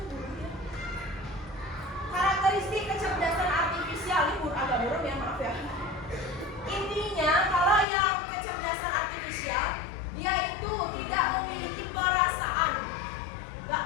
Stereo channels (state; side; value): drops out; right; at 7.9 s